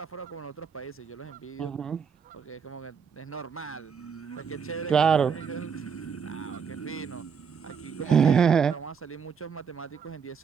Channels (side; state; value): left; quieter; 6.6 dB